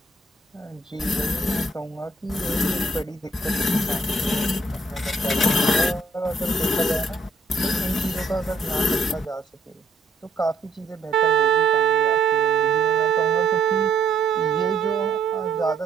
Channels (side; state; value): left; quieter; 3.2 dB